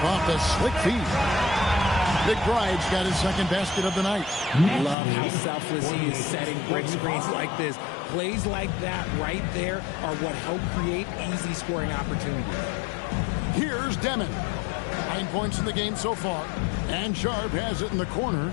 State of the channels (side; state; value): right; drops out; at 5.0 s